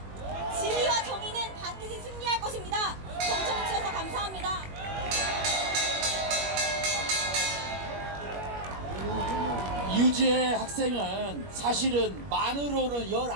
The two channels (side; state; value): left; late; 21 ms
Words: 진리와 정의는 반드시 승리할 것입니다. 경청해 주셔서 감사합니다. 유지의 학생은 사실은 만으로는